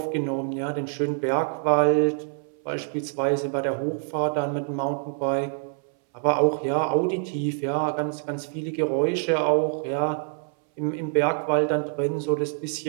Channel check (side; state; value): left; silent; 61 dB below the other